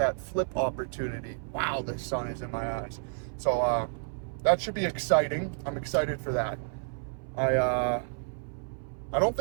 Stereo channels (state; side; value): silent; left; 58 dB below the other